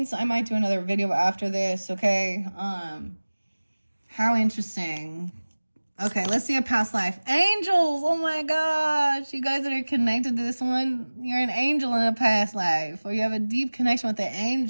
I might do another video after this, okay? How interesting. Okay, let's see a past life. Angels! Oh my gosh! You guys that are connected to this one, you're an angel in a past life. Or you have a deep connection with the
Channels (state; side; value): inverted; both; correlation -1.00